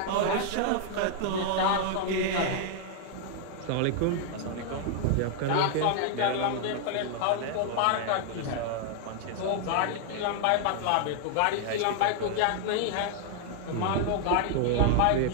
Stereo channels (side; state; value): both; different; correlation 0.00